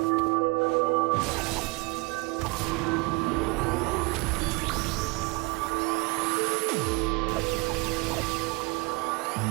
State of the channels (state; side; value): quieter; left; 27.0 dB